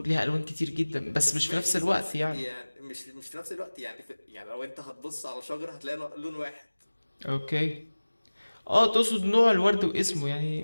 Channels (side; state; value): both; inverted; correlation -1.00